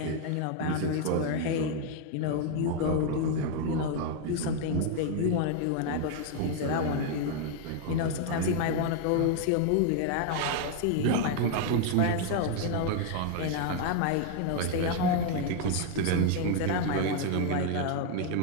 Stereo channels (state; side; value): different; both; correlation 0.00